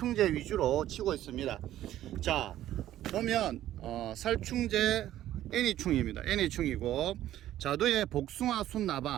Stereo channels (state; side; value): quieter; left; 13.0 dB